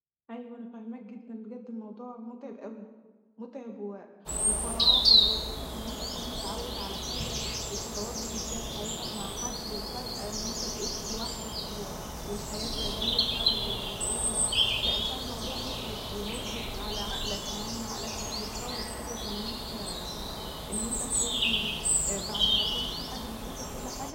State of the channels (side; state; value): both; identical; correlation 1.00